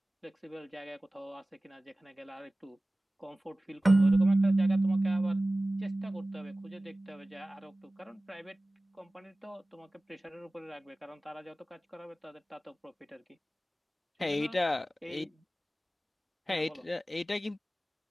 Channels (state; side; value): normal; both; correlation 0.97